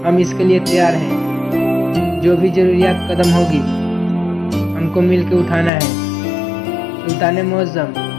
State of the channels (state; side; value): drops out; right; at 5.7 s